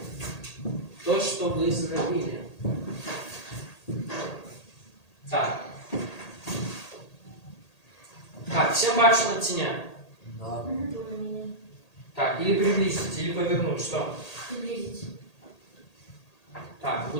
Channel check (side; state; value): right; late; 1.8 ms